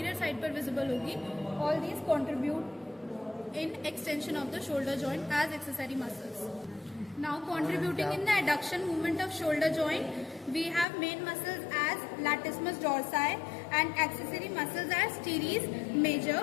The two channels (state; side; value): drops out; right; at 10.9 s